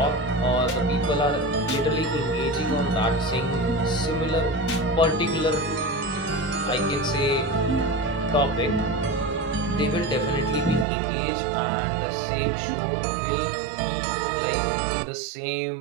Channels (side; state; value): left; drops out; at 10.9 s